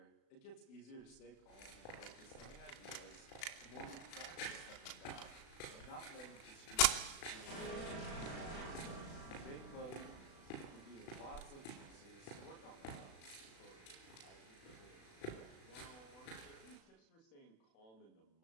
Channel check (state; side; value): late; right; 36 ms